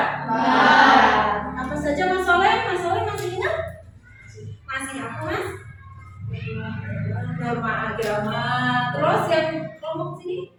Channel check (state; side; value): identical; both; correlation 1.00